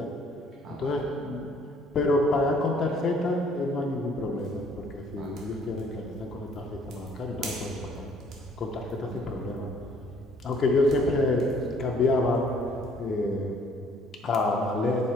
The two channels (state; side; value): normal; both; correlation 0.60